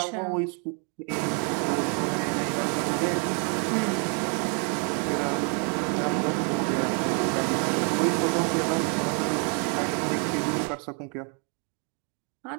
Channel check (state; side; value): quieter; left; 38.6 dB